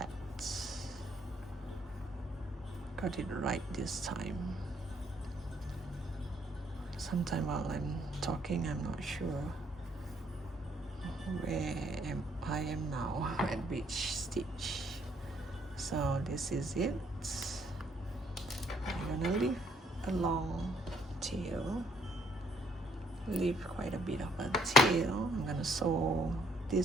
Got it right this time. Sometime while I'm talking, I'm not sure where I am now at which stitch. So this is it. I'm gonna leave a long tail, leave quite a bit of a tail. I'm gonna sew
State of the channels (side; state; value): both; normal; correlation 0.67